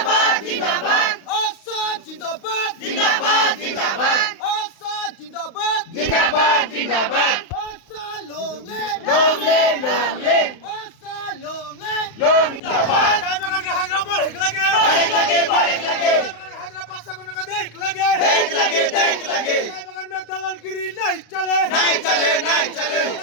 Assad Zindabad! Assad Zindabad! জিন্দাবাদ Assad long live! Long live Assad long live! চায় বাগানকে হাজরা পর হেক লাগে. বারেক লাগে চায় বাগানকে হাজরা 500 টাকা দেখ লাগে. দেখ লাগে चाय बगान में दलालगिरी नहीं चले. नहीं चले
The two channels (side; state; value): right; late; 35 ms